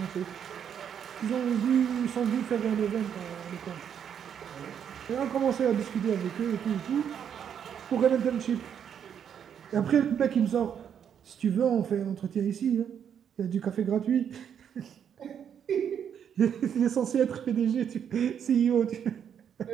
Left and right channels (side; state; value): left; quieter; 8.4 dB